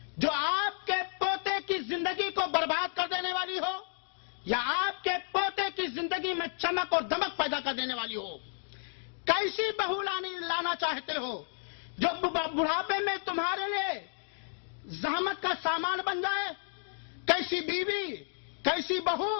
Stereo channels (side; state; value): right; silent; digital silence